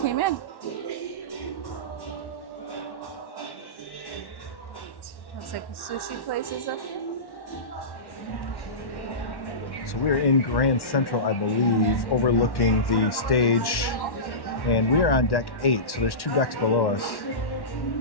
in. Looks like the sushi place is up here. So we're in Grand Central, I believe, overlooking the stage, and we are on deck 8. So there's 2 decks below us.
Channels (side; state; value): right; late; 1.1 ms